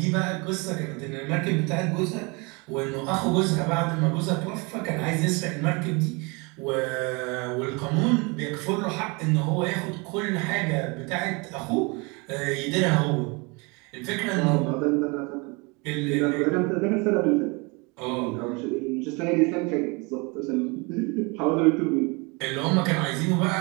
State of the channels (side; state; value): left; quieter; 29.0 dB